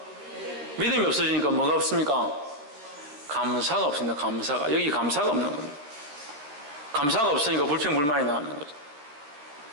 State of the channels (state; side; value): late; left; 13 ms